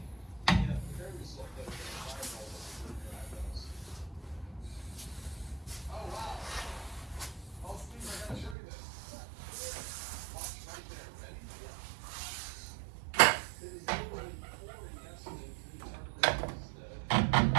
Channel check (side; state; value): left; drops out; at 8.6 s